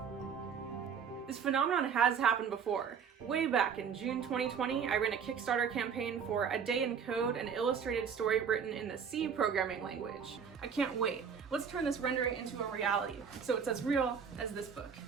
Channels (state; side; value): quieter; left; 6.8 dB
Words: This phenomenon has happened before. Way back in June 2020, I ran a Kickstarter campaign for A Day in Code, an illustrated story written in the C programming language. I can't wait. Let's turn this rendering into a reality, so it's as real as this book.